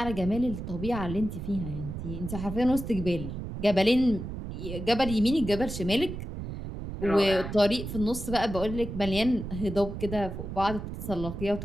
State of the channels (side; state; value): right; noise; rumble, 7 dB below the sound